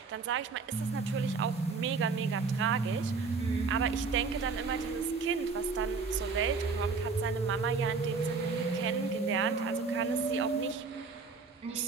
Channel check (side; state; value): left; quieter; 4.7 dB